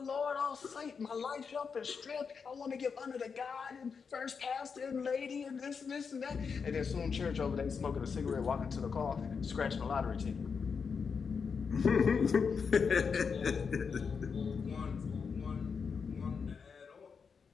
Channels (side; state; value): right; quieter; 5.8 dB